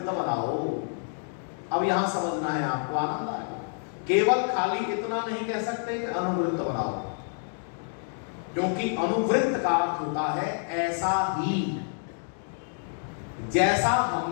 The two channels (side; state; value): right; silent; 59 dB below the other